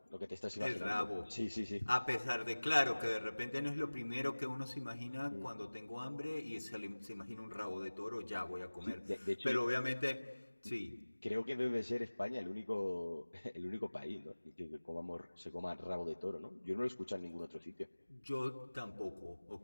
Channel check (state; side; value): inverted; both; correlation -1.00